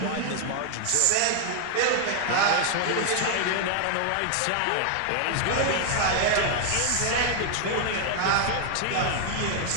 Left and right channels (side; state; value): both; different; correlation 0.00